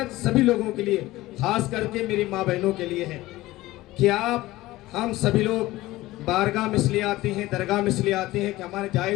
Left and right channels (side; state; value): right; quieter; 17.8 dB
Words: سبھی لوگوں کے لیے، خاص کر کے میری ماں بہنوں کے لیے ہے کہ ہم سبھی لوگ بارگاہ میں اس لیے آتے ہیں، درگاہ میں اس لیے آتے ہیں کہ ہمارے